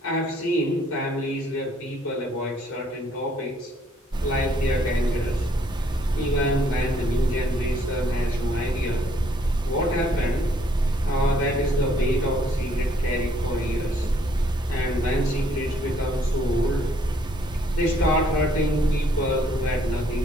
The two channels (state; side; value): normal; both; correlation 0.66